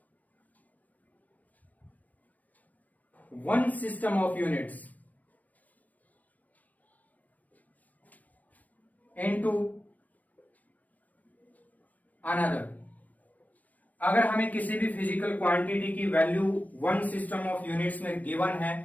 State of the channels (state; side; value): late; right; 0.076 ms